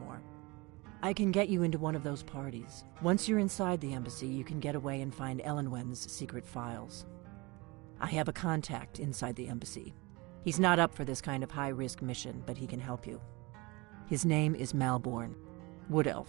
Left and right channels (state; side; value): quieter; left; 24.9 dB